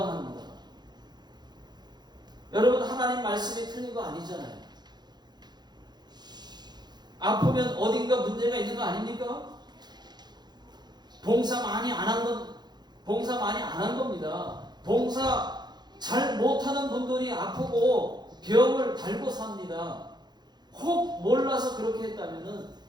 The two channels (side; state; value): left; late; 0.21 ms